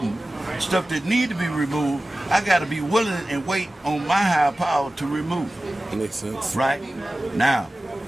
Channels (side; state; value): both; normal; correlation 0.96